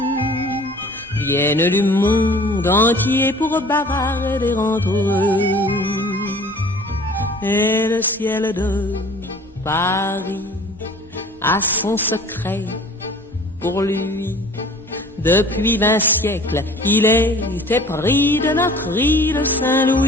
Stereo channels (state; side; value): normal; both; correlation 0.47